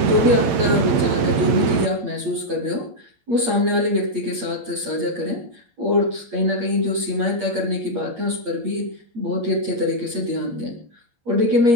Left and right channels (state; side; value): late; left; 8.6 ms